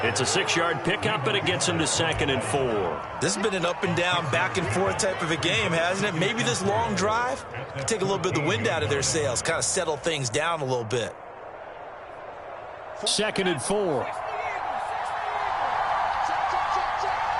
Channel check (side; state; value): both; identical; correlation 1.00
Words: It's a 6-yard pickup, and it gets him to 2nd and 4. This has been an up and down, back and forth type of a game, hasn't it? Maybe this long drive can take a little bit of the wind out of their sails, kind of settle things down a little bit. 2nd and 4.